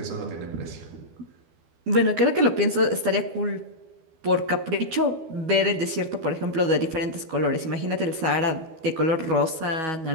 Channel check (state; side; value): late; left; 12 ms